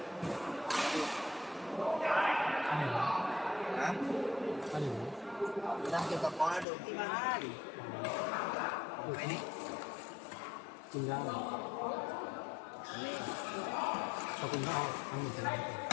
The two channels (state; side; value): drops out; right; at 6.7 s